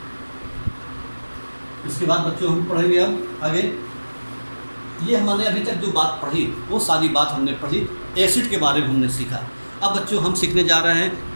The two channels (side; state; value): both; inverted; correlation -1.00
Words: इसके बाद बच्चों हम पढ़ेंगे अब आगे। ये हमने अभी तक जो बात पढ़ी वो सारी बात हमने पढ़ी एसिड के बारे में हमने सीखा। अब बच्चों हम सीखने जा रहे